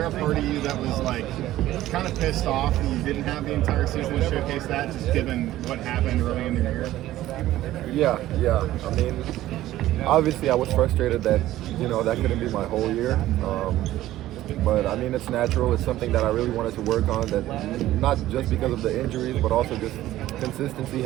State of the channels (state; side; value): quieter; left; 14.7 dB